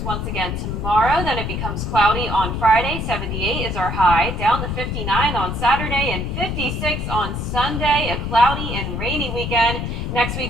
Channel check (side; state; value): left; noise; rumble, 3 dB below the sound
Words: once again tomorrow. Then it becomes cloudy on Friday. 78 is our high. Down to 59 on Saturday and 56 on Sunday. A cloudy and rainy weekend. Next